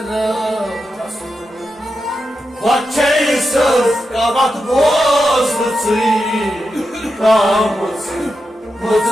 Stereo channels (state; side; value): normal; both; correlation 0.88